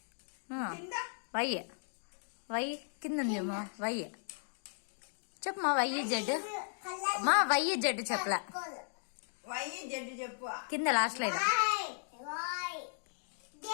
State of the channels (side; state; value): right; silent; digital silence